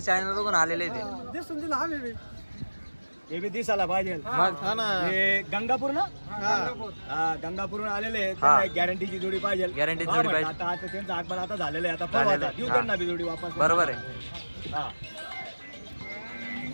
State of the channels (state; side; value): inverted; both; correlation -1.00